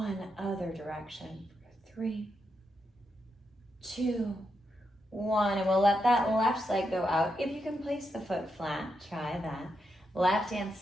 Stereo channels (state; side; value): normal; both; correlation 0.83